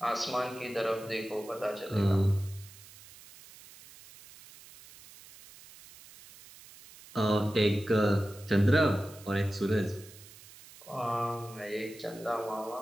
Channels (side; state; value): right; noise; hiss, 20 dB below the sound